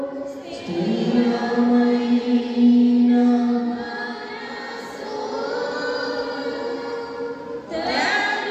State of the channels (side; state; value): both; identical; correlation 1.00